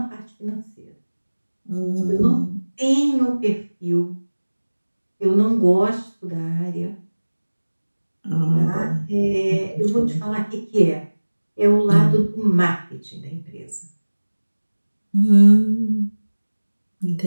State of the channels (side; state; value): both; inverted; correlation -1.00